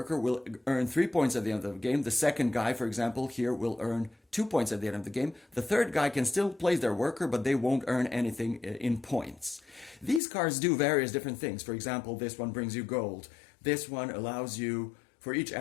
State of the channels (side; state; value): right; drops out; at 10.2 s